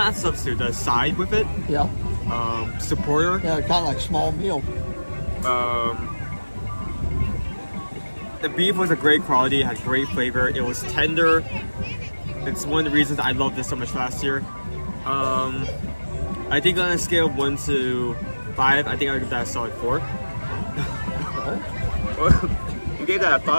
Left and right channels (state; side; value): inverted; both; correlation -1.00